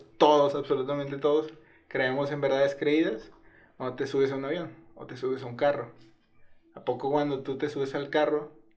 absolutamente todos, creemos en verdades creídas cuando te subes a un avión o te subes a un carro. ¿A poco cuando tú te subes al carro,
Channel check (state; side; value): identical; both; correlation 1.00